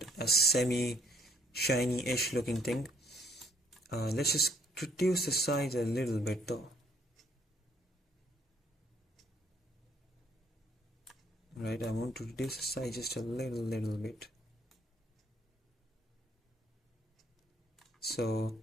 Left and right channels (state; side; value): normal; both; correlation 0.64